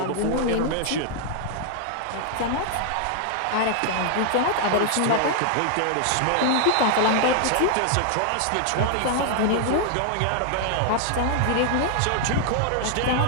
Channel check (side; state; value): both; different; correlation 0.00